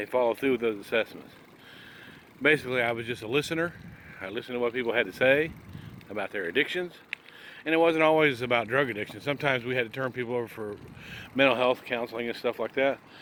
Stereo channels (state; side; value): identical; both; correlation 1.00